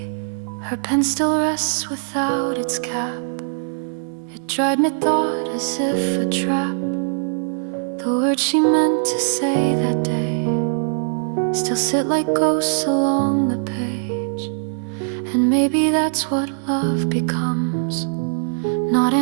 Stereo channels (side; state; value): left; silent; 57 dB below the other